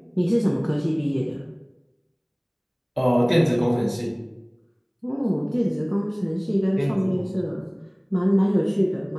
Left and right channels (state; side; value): identical; both; correlation 1.00